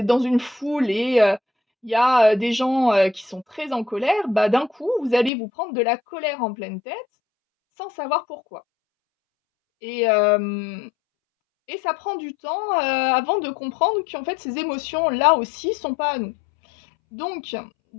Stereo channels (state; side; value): drops out; right; at 5.3 s